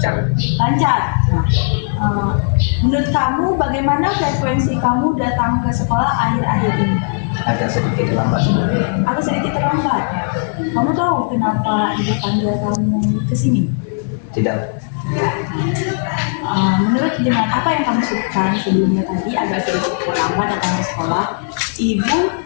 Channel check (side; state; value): right; silent; digital silence